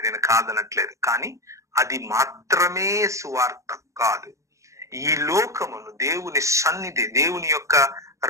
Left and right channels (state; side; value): late; left; 0.15 ms